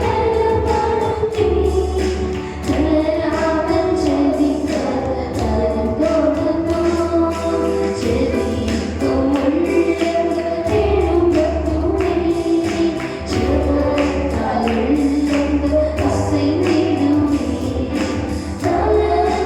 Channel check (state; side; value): identical; both; correlation 1.00